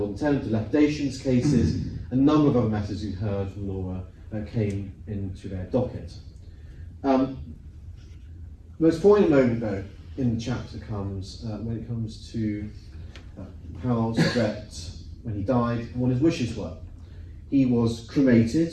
and tenant dilapidations cases. A number of other matters you've heard from Laura came into their docket. The most poignant moment, though, in the chapter comes when it comes to how Brett, when he died, and what his wishes were. He was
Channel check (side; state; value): both; identical; correlation 1.00